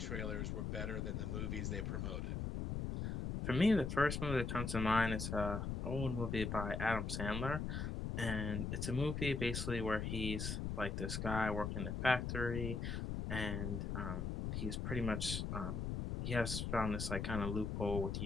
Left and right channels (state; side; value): noise; left; rumble, 2 dB below the sound